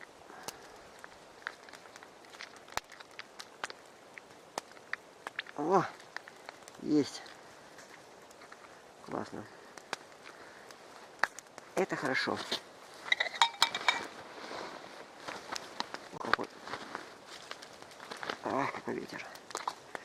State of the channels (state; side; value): identical; both; correlation 1.00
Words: О, есть. Классно. Это хорошо. Какой. Ах, какой ветер.